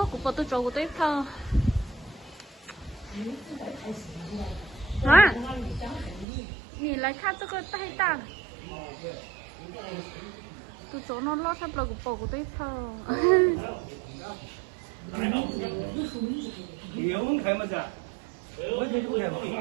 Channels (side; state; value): left; drops out; at 6.2 s